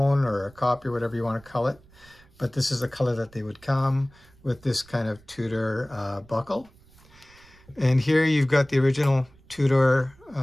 or a copy, whatever you want to call it. But this is the color that they would come with, this kind of Tudor buckle. And here you've got the original Tudor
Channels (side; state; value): right; noise; rumble, 27 dB below the sound